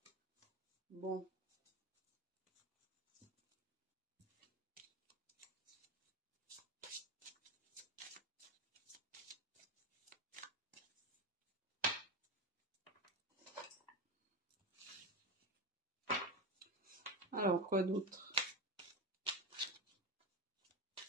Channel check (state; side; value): normal; both; correlation 0.19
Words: Bon. Alors, quoi d'autre?